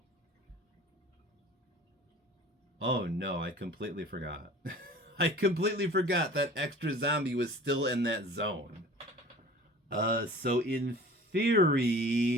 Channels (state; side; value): normal; both; correlation 0.44